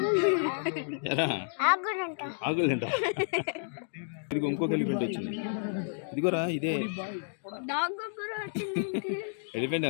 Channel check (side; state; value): right; silent; digital silence